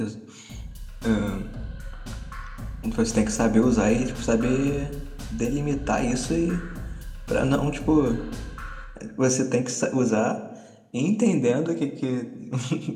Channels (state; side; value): identical; both; correlation 1.00